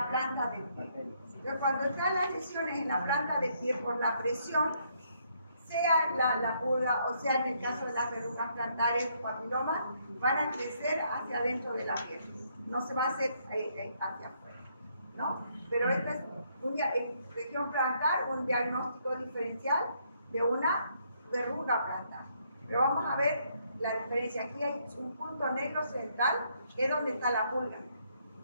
planta del pie. Pero cuando están las lesiones en la planta del pie por la presión, sea la pulga o sea en el caso de las verrugas plantares o papilomas, van a crecer hacia adentro de la piel. No se va a hacer hacia afuera, ¿no? Pero esta es en región plantar, un diagnóstico diferencial de una verruga plantar. Pero vamos a ver la diferencia. Aquí hay un punto negro central, que es donde está la pulga.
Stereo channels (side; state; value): both; inverted; correlation -0.71